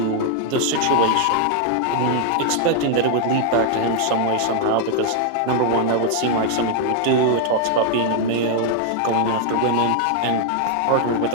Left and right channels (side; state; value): both; different; correlation 0.00